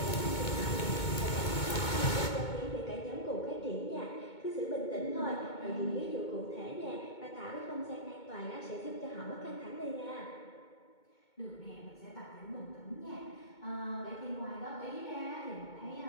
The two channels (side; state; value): right; late; 2.2 ms